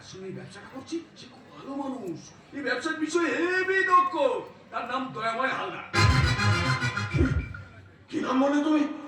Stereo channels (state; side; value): identical; both; correlation 1.00